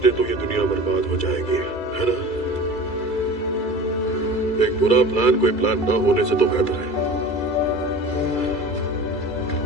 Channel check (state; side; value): late; right; 2.3 ms